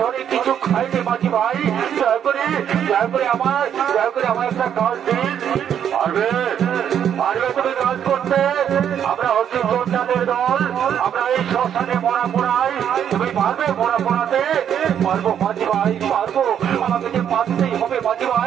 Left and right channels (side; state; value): left; quieter; 9.1 dB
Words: ধরে কিছু খাইনি মাঝি ভাই, দয়া করে আমার একটা কাজ দিন। পারবে তুমি কাজ করতে? আমরা হচ্ছি যোদ্ধাদের দল, আমরা এই শ্মশানে মরা পোড়াই, তুমি পারবে মরা পোড়াতে? পারবো মাঝি ভাই, পারবো, আমাকে যে পারতেই হবে মাঝি